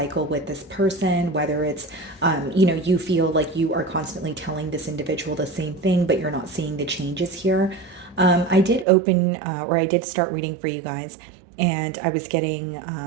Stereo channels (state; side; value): drops out; left; at 8.8 s